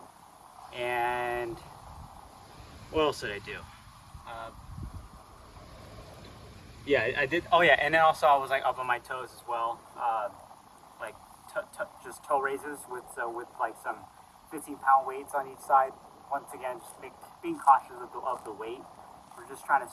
And what else did I do? Yeah, I did. Oh yeah, and then also I was like up on my toes as well, like just toe raises with like some 15-pound weights on each side. Once again, just being cautious of the weight. We're just trying to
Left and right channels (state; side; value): identical; both; correlation 1.00